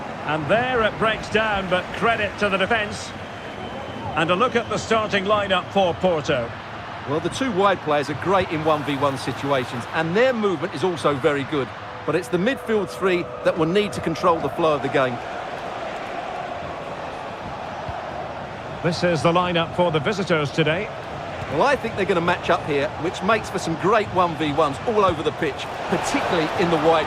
And there it breaks down, but credit to the defence. And a look at the starting lineup for Porto. Well, the two wide players are great in 1v1 situations, and their movement is also very good. But it's the midfield three that will need to control the flow of the game. This is the lineup for the visitors today. Well, I think they're going to match up here, which makes for some great 1v1s all over the pitch, particularly in the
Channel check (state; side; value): identical; both; correlation 1.00